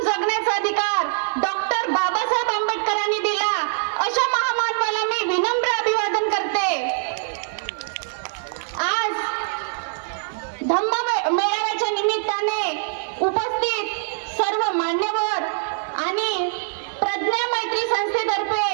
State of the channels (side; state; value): left; silent; digital silence